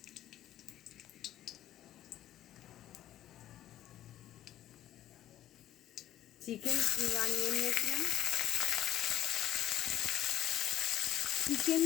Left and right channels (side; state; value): right; quieter; 12.7 dB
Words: চিকেন কিমা নিয়ে নিয়েছিলাম, চিকেন